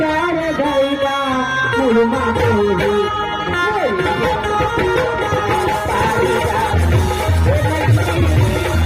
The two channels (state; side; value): identical; both; correlation 1.00